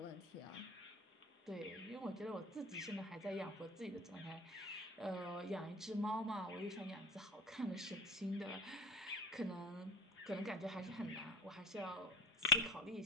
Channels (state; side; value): normal; both; correlation 0.34